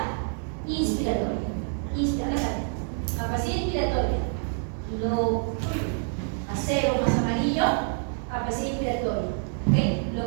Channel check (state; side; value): silent; left; 60 dB below the other